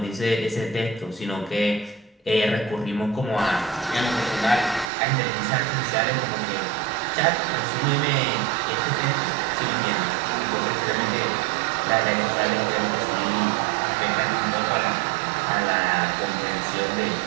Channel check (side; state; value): left; drops out; at 4.9 s